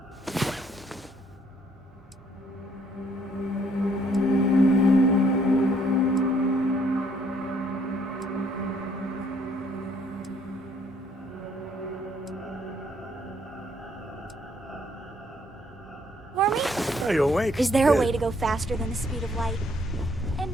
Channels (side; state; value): both; normal; correlation 0.66